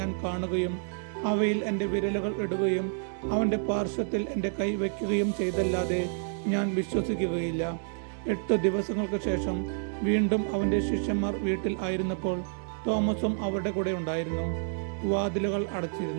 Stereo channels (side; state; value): left; silent; digital silence